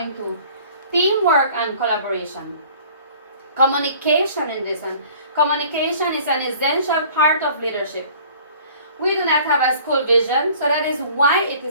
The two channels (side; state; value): both; inverted; correlation -0.50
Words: Teamwork and Collaboration. Communication in this one. Communication is an essential part of leadership. We do not have a school vision, so that is why it